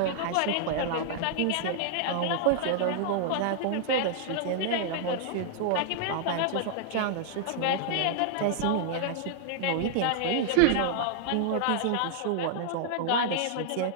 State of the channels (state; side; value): different; both; correlation -0.01